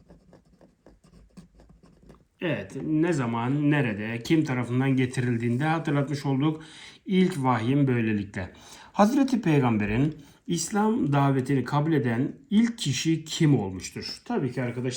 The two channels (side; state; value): both; identical; correlation 1.00